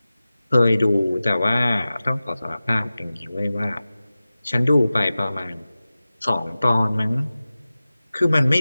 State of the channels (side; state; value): both; inverted; correlation -0.96